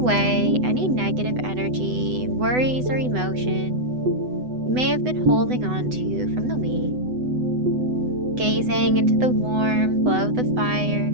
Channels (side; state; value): left; late; 8.0 ms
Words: any negative energy, worries, or emotion you may have been holding on to from the week. Gazing into the warm glow of the fire